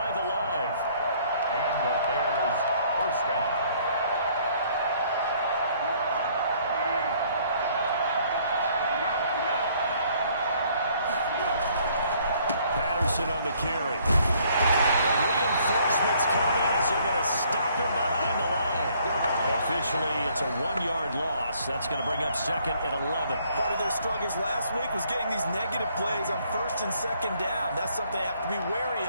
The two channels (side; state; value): both; inverted; correlation -0.63